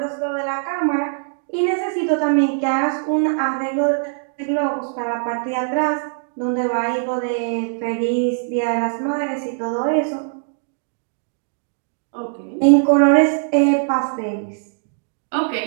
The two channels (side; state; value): left; silent; digital silence